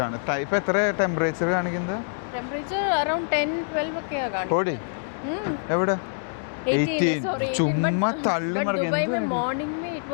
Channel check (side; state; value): right; silent; digital silence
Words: ആണ്. ടൈപ്പ് എത്ര ടെമ്പറേച്ചർ കാണിക്കുന്നത്? ടെമ്പറേച്ചർ അറൌണ്ട് 10-12 ഒക്കെയാ കാണിക്കുന്നത്. എവിടെ? 18 sorry 18 but Dubai में morning में it